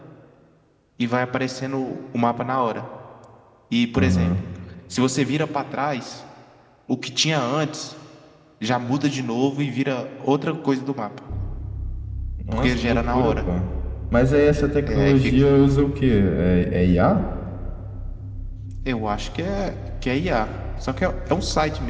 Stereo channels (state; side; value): identical; both; correlation 1.00